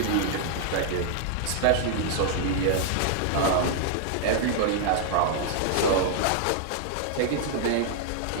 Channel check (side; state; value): both; different; correlation 0.00